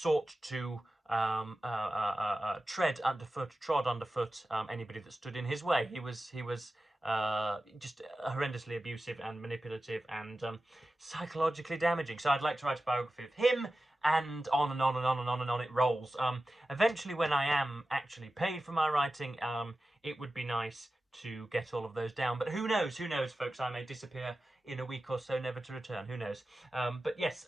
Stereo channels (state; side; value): normal; both; correlation 0.94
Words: to trod underfoot anybody that stood in his way. He was just horrendously abusive and manipulative and psychologically damaging. So I'd like to write a biography of him, and on and on and on and on and on it rolls. Eventually, when I am actually paid for my writing, it would be nice to get all of those down. But who knows, folks? I may disappear in a week or so, never to return. Who knows? But yes,